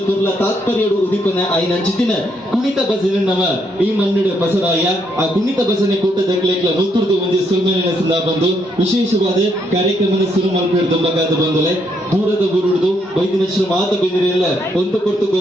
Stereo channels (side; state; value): both; normal; correlation 0.74